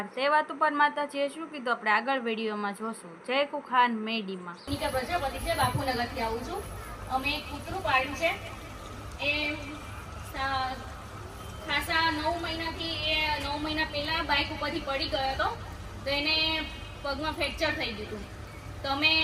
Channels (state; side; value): identical; both; correlation 1.00